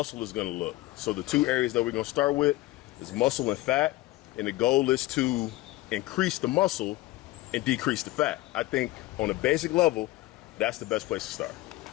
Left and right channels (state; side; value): quieter; right; 18.3 dB